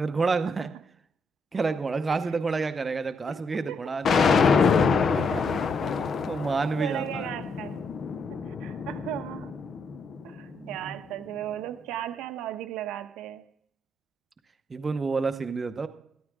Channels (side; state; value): both; normal; correlation 0.76